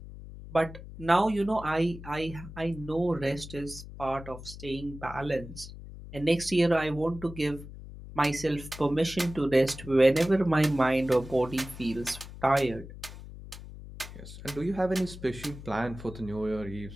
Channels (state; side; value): noise; left; hum, 14 dB below the sound